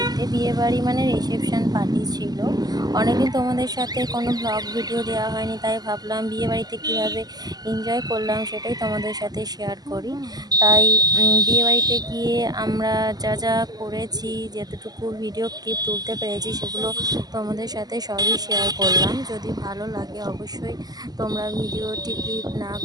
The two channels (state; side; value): late; left; 0.19 ms